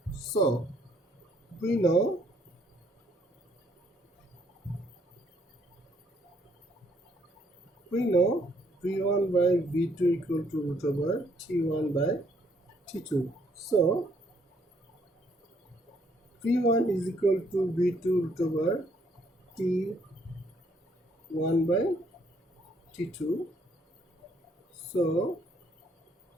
So we know V1 by V2 equal to root over T1 by T2. So V1 is equal to V2 root over T1 by T2. So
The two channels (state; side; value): normal; both; correlation 0.68